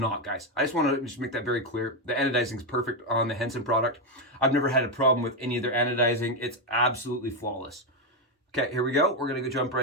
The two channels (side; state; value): both; normal; correlation 0.06